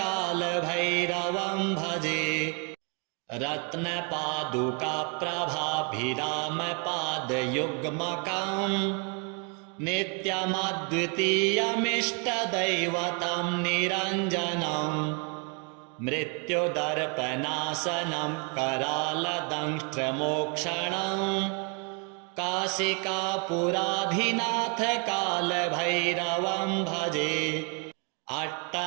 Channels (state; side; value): quieter; left; 33.6 dB